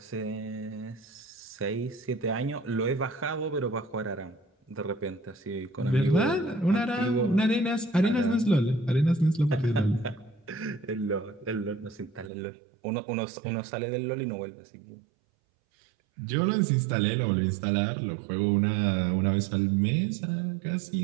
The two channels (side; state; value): left; drops out; at 12.3 s